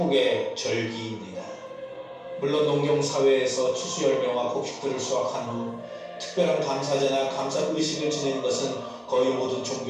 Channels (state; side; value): identical; both; correlation 1.00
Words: 절기입니다. 물론 농경사회에서 추수 열매와 곡식들을 수확한 후 특별한 감사제나 감사의식을 지내는 것은 거의 모든